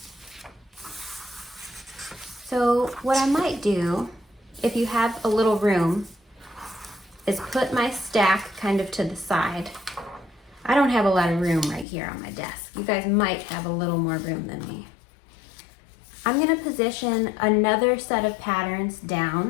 So what I might do, if you have a little room, is put my stack kind of to the side. I don't have a lot of room right here on my desk. You guys might have a little more room than me. I'm gonna position another set of patterns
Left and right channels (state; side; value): drops out; right; at 11.9 s